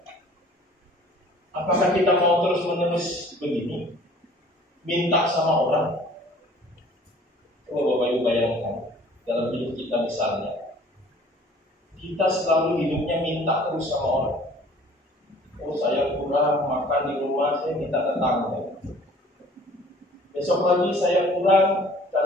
Apakah kita mau terus-menerus begini? Minta sama orang? Coba Bapak Ibu bayangkan, dalam hidup kita misalnya, kita selalu hidupnya minta terus sama orang. Oh, saya kurang makan di rumah, saya minta tetangga. Besok lagi saya kurang,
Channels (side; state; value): both; normal; correlation 0.51